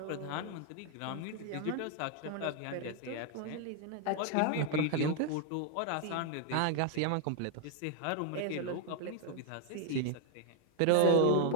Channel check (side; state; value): both; different; correlation 0.00